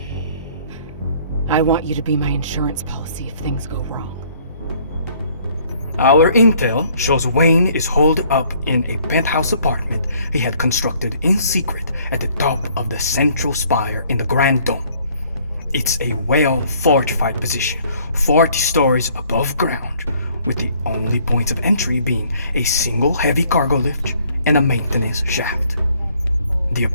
I want you to be my insurance policy if things go wrong. Our intel shows Wayne is holed up in a penthouse apartment he had constructed in secret at the top of the central spire in the Grand Dome. It's a well-fortified position, 40 stories above ground, with the only points of entry being a single heavy cargo lift and a maintenance shaft. The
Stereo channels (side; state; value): both; inverted; correlation -0.61